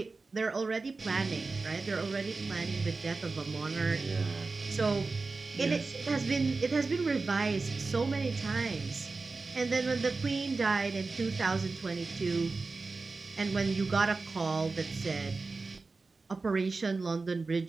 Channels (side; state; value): left; quieter; 3.9 dB